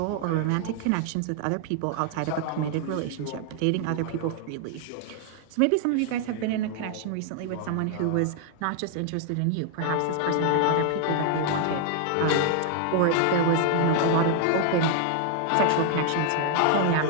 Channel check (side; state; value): both; different; correlation 0.00